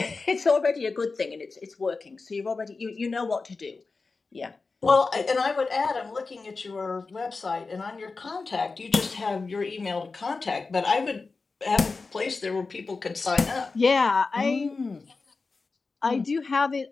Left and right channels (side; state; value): right; quieter; 4.1 dB